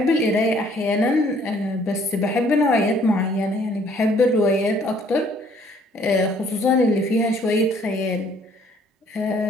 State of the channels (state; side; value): normal; both; correlation 0.61